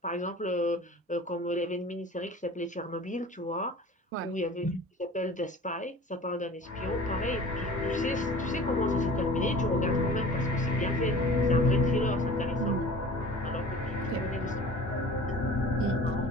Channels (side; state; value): both; normal; correlation 0.43